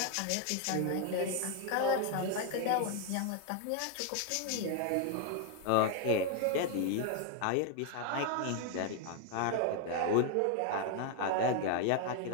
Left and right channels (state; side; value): different; both; correlation 0.01